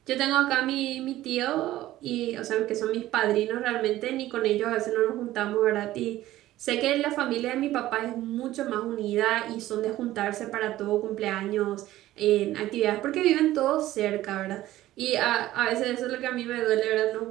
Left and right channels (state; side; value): quieter; left; 15.1 dB